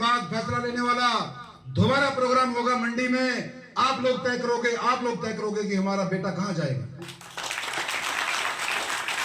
फैसला लेने वाला। दोबारा प्रोग्राम होगा मंडी में, आप लोग तय करोगे कि हमारा बेटा कहां जाएगा।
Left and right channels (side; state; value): both; identical; correlation 1.00